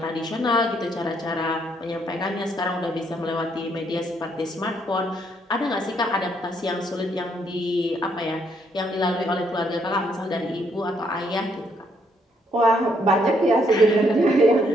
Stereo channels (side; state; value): both; normal; correlation 0.71